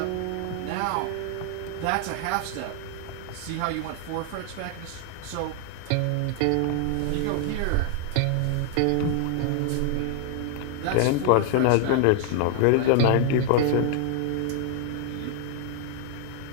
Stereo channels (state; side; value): different; both; correlation 0.00